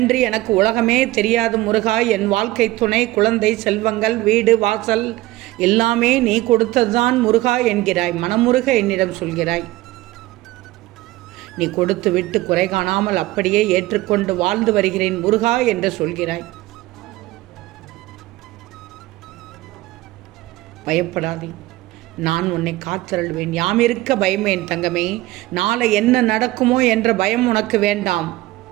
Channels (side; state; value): left; quieter; 18.0 dB